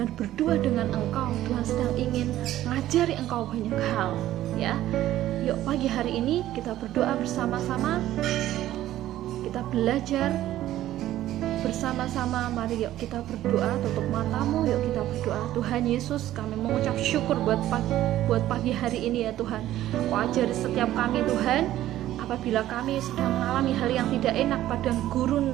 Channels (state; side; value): quieter; left; 13.7 dB